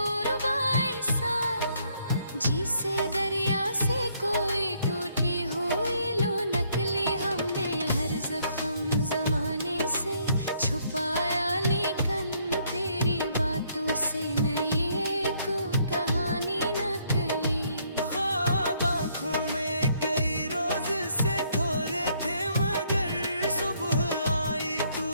ऐसा, जिसे दरिया से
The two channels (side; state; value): both; inverted; correlation -0.69